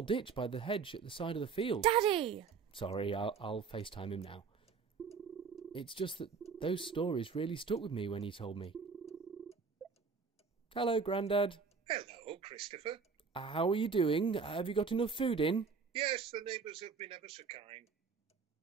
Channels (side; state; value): left; quieter; 5.4 dB